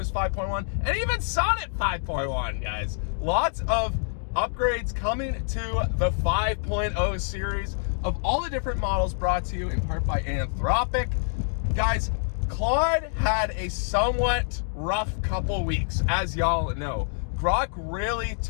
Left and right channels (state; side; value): silent; right; digital silence